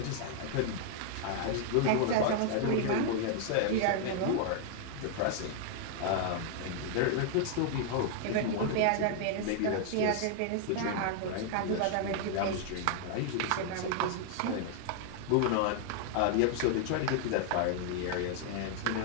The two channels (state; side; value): different; both; correlation 0.00